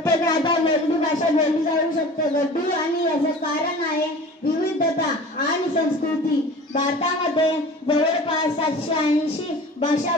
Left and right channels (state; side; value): normal; both; correlation 0.40